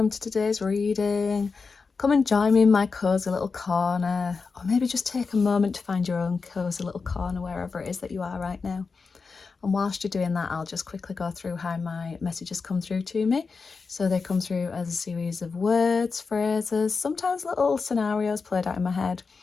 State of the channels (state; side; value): quieter; right; 4.7 dB